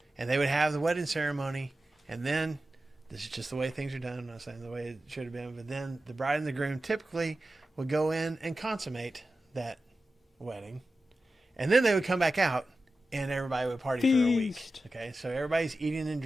And they would have the wedding ceremony, and then, this is just the way things are done, I'm not saying the way it should have been, but then the bride and the groom typically would go in and consummate that wedding. And then they would come back out, and everybody would party for a week. Feast. Okay, so everybody's eating and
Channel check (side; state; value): both; normal; correlation 0.93